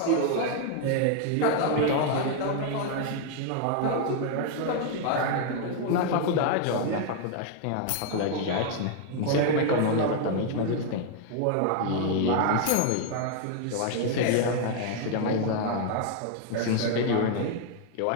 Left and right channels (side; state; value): both; different; correlation 0.00